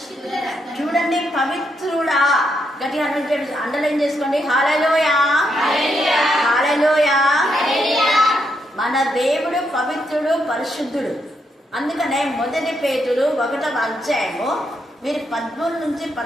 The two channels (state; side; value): normal; both; correlation 0.79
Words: చూడండి పవిత్రుడా, గట్టిగా అండర్లైన్ చేసుకోండి. హల్లెలూయా, హల్లెలూయా. మన దేవుడు పవిత్రుడు, పరిశుద్ధుడు. అందుకనే 1 పేతురు 1వ అధ్యాయము మీరు 13 నుంచి